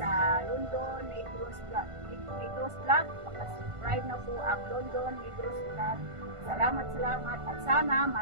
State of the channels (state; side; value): late; left; 1.5 ms